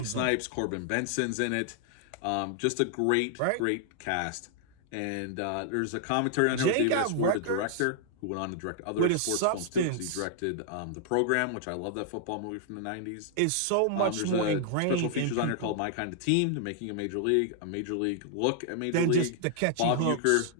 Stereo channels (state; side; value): different; both; correlation -0.01